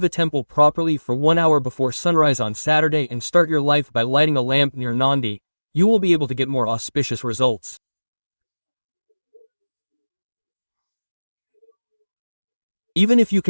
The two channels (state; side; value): inverted; both; correlation -1.00